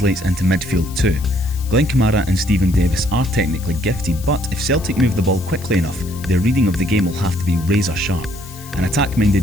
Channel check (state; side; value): noise; left; hiss, 18 dB below the sound